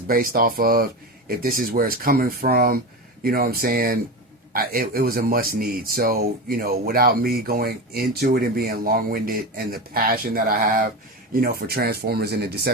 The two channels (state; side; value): normal; both; correlation 0.22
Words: based off of, if this is where it's coming from, you know what I'm saying, it was a must need. So, without me going into it and being long-winded, and the passion that I have, for Transformers and the